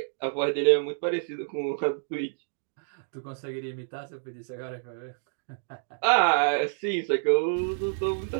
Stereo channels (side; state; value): left; silent; digital silence